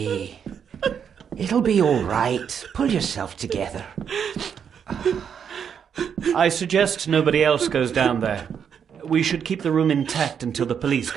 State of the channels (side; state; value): left; quieter; 7.6 dB